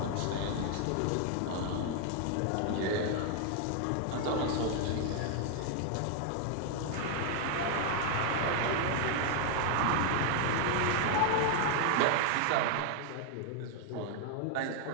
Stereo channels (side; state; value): both; different; correlation 0.00